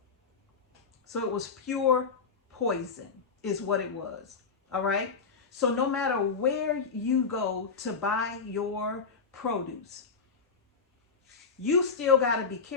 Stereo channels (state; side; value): quieter; right; 5.2 dB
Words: So it was pure poison is what it was. All right? So no matter where you go to buy your produce, you still got to be